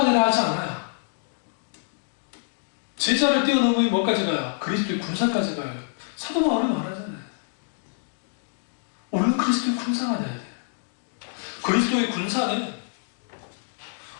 되려 하지 않아요. 제자를 뛰어넘으면 뭐까지 가요? 그리스도의 군사까지 가요. 사도 바울이 말하잖아요. 우리는 그리스도의 군사가 돼야 돼요. 그리스도의 군사는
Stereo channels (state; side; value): silent; right; digital silence